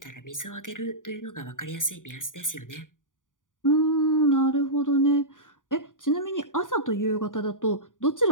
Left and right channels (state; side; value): late; right; 0.88 ms